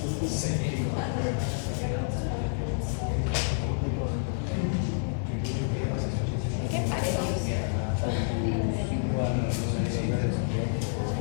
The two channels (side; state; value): right; silent; 59 dB below the other